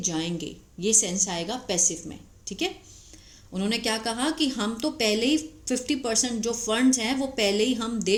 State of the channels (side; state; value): both; identical; correlation 1.00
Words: जाएंगे, ये सेंस आएगा पैसिव में। ठीक है, उन्होंने क्या कहा कि हम तो पहले ही 50% जो फंड्स हैं वो पहले ही हम दे